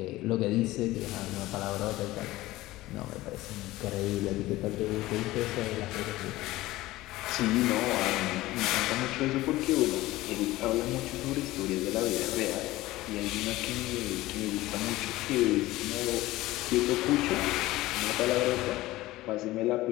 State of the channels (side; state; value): right; quieter; 17.7 dB